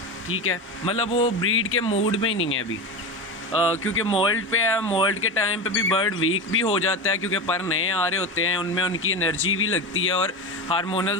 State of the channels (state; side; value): normal; both; correlation 0.21